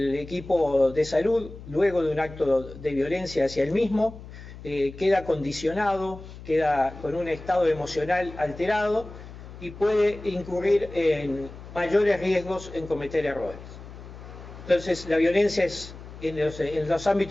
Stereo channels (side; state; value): left; noise; hum, 15 dB below the sound